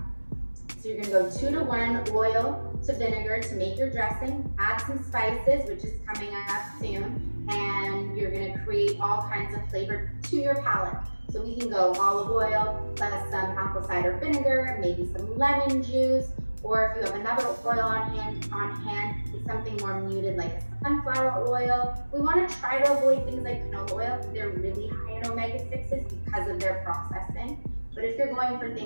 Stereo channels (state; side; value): inverted; both; correlation -1.00